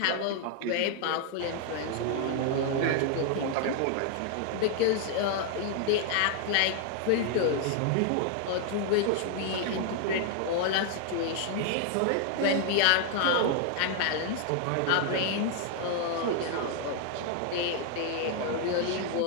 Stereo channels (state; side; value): different; both; correlation 0.00